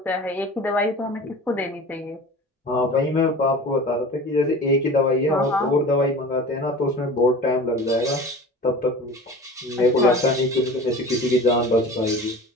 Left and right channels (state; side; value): normal; both; correlation 0.38